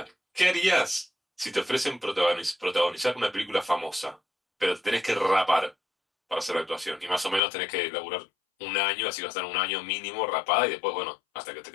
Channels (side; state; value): right; drops out; at 7.4 s